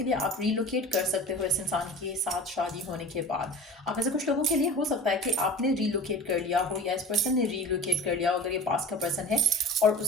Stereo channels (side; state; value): both; normal; correlation 0.38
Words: लिए आप रीलोकेट कर सकते हो इस इंसान के साथ शादी होने के बाद। आप में से कुछ लोगों के लिए हो सकता है कि आपने रीलोकेट कर लिया हो या इस पर्सन ने रीलोकेट कर लिया हो अगर ये पास का पर्सन है, और